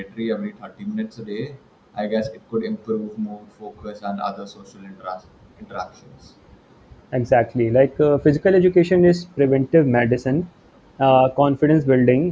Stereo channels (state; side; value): identical; both; correlation 1.00